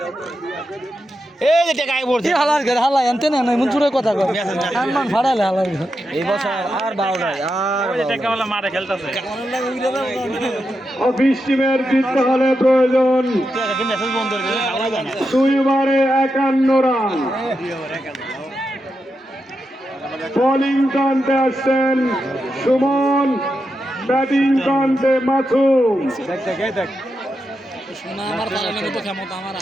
এই যে টাকা আই পড়ছে হালার ঘর হালা আনতে না মন চুরে কথা কর সম্মান ফাড়ালে হালার ঘর এই বছর আর বাউ নাই আর ওই যে টাকাওয়ালা মারে খেলতাছে অফিস টিমের জিততে হলে প্রয়োজন তুই মেসেজ বন্ধ করে দিলে খাওয়া যায় না 2 ওভারে 51 রান বোলিং কান্তে আসছেন সুমন ব্যাটিং কান্তে মাসুম সোনা আমার পালানোর মতো ক্ষমতা আমার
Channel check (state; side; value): normal; both; correlation 0.87